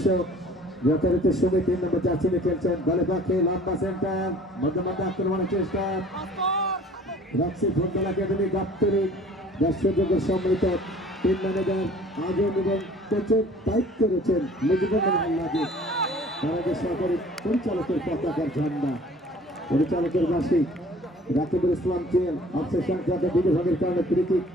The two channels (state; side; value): normal; both; correlation 0.50